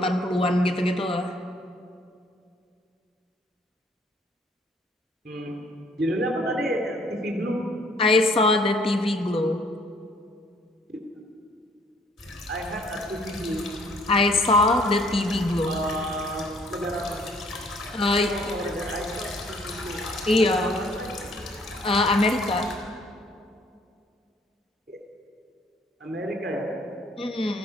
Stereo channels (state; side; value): normal; both; correlation 0.61